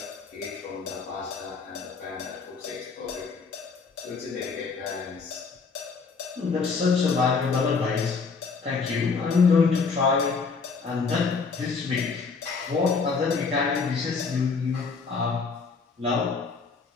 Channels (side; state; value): right; quieter; 4.9 dB